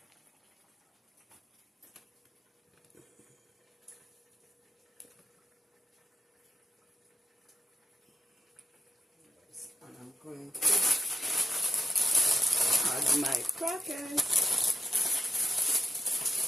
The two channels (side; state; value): both; normal; correlation 0.88